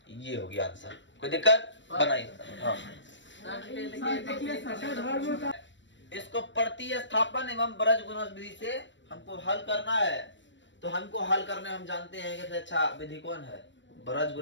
ये हो गया आंसर, कोई दिक्कत बनाइए। हाँ इसको प्रतिस्थापन एवं बृहद गुणज विधि से हमको हल करना है। तो हमको हल करने हम जानते हैं कि अच्छा विधि कौन है, बृहद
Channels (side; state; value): right; late; 0.53 ms